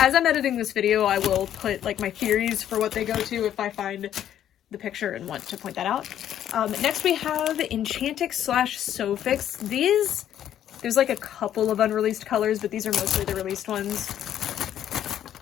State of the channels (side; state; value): right; quieter; 10.7 dB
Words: I'm editing this video, I will put like my theories for what they go to if I find the picture and want to point that out. Next we have Enchantix Sofix. These, there's like a couple of unreleased colors, but these are mostly the released ones.